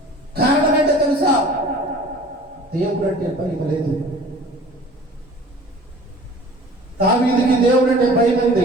కారణం ఏంటో తెలుసా? దేవుడు అంటే భయం లేదు. దావీదుకి దేవుడు అంటే భయం ఉంది.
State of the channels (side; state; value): both; normal; correlation 0.46